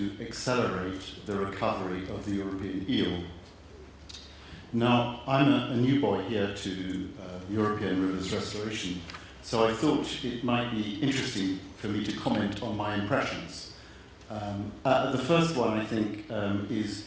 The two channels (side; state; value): both; identical; correlation 1.00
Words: accelerate the recovery of the European eel. Now, I'm a new boy here to European Rivers Restoration, so I thought it might be interesting for me to comment on my impressions. The first one, I think, is